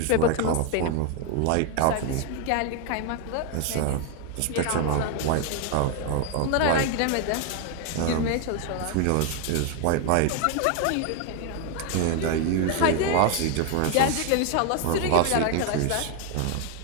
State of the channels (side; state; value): both; different; correlation 0.01